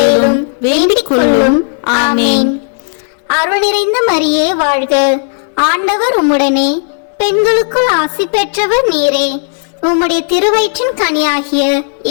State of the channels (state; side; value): silent; right; 61 dB below the other